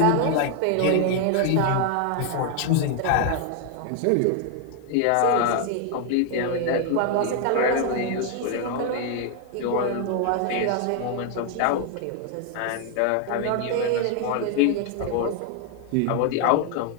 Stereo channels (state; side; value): different; both; correlation 0.00